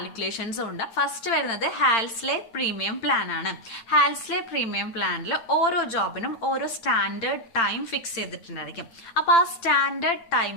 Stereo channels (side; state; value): right; late; 8.8 ms